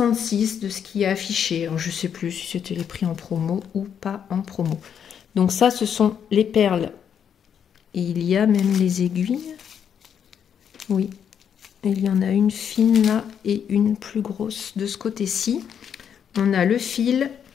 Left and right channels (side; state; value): right; quieter; 8.2 dB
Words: de ce qui est affiché. Alors, je ne sais plus si c'était les prix en promo ou pas en promo. Donc ça, ce sont les perles. Et il y a même les aiguilles. Oui, il y en a une fine là et une plus grosse de ce côté-ci. On a le fil.